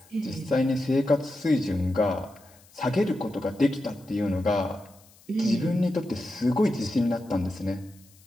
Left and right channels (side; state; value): left; noise; hiss, 27 dB below the sound